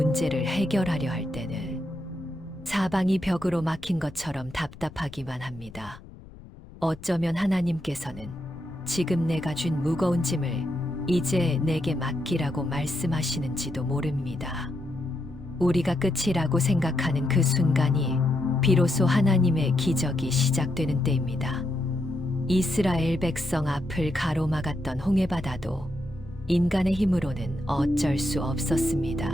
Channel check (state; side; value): noise; left; rumble, 18 dB below the sound